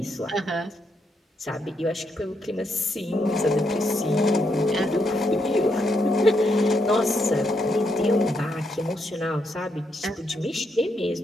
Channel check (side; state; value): both; normal; correlation 0.79